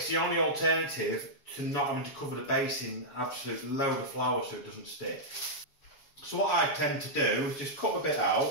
the only alternative to not having to cover the base in an absolute load of flour so it doesn't stick. So what I tend to do is just cut a bit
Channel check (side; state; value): right; late; 7.1 ms